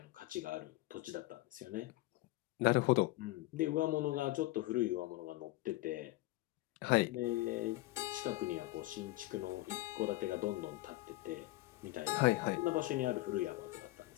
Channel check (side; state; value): right; quieter; 18.8 dB